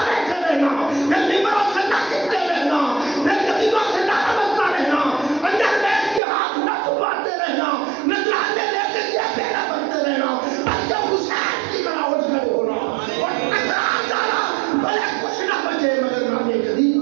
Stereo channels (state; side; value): drops out; left; at 6.2 s